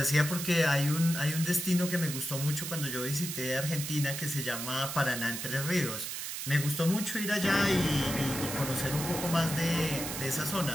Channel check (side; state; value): right; noise; hiss, 5 dB below the sound